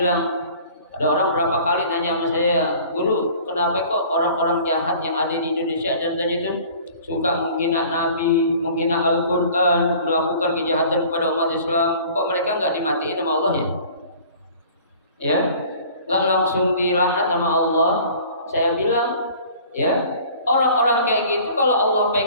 ada orang berapa kali nanya sama saya, guru, kenapa kok orang-orang jahat yang ada di Indonesia contohnya itu suka menghina Nabi, menghina Al-Quran, melakukan kejahatan kepada umat Islam, kok mereka nggak dimatiin sama Allah ya? Ya, nggak langsung dilaknat sama Allah. Saya bilang, ya, orang-orang kayak gitu kalau Allah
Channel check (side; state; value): both; inverted; correlation -0.48